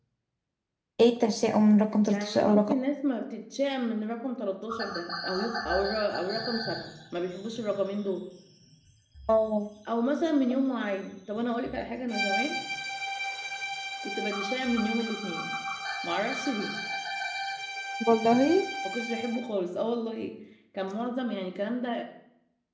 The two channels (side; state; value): both; identical; correlation 1.00